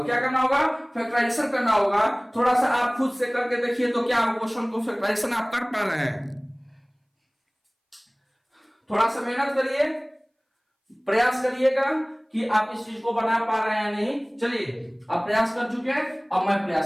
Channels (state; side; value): identical; both; correlation 1.00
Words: क्या करना होगा, फैक्टराइजेशन करना होगा। थोड़ा सा आप खुद से करके देखिए तो क्या क्वेश्चन को फैक्टराइजेशन आप कर पा रहे हैं। थोड़ा सा मेहनत करिए, प्रयास करिएगा कि आप इस चीज को बना पा रहे हैं नहीं। चलिए आप प्रयास कर चुके हैं, अब मैं